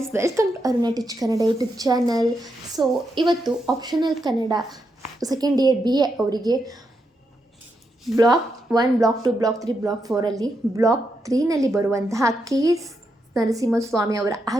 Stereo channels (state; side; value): normal; both; correlation 0.83